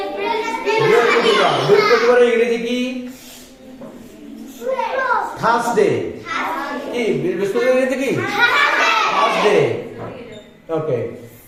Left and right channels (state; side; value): identical; both; correlation 1.00